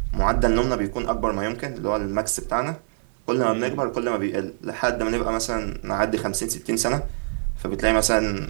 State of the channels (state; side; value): silent; left; 55 dB below the other